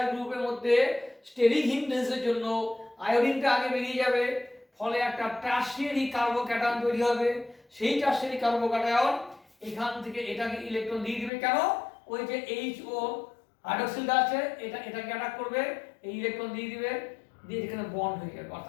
গ্রুপের মধ্যে স্টেরিক হিন্ড্রেন্সের জন্য আয়োডিনটা আগে বেরিয়ে যাবে, ফলে একটা টারশিয়ারি কার্বোক্যাটায়ন তৈরি হবে। সেই টারশিয়ারি কার্বোক্যাটায়ন এখান থেকে এটাকে ইলেকট্রন দিয়ে দিবে, কেন? ওই যে HO হাইড্রোক্সিলটা আছে, এটাকে অ্যাটাক করবে, এই ইলেকট্রন দিয়ে দিবে, দিয়ে এখানে বন্ড হয়ে যাবে,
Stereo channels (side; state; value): right; drops out; at 11.3 s